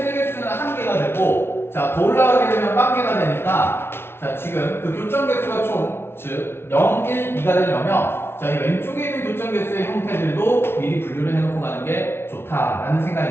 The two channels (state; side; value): late; right; 0.12 ms